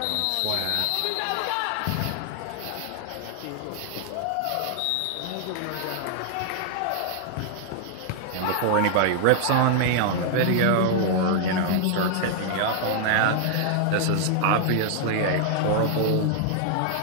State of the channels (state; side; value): different; both; correlation 0.00